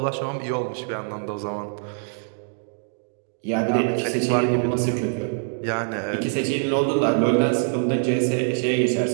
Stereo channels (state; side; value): silent; left; digital silence